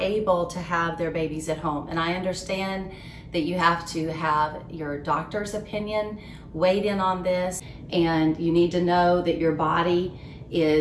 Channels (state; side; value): identical; both; correlation 1.00